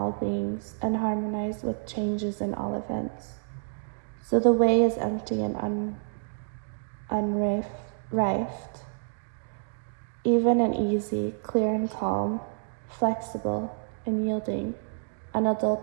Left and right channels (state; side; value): silent; left; digital silence